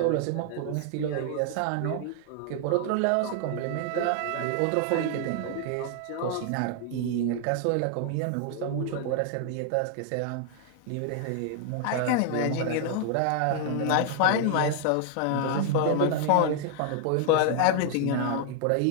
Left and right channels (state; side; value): different; both; correlation 0.00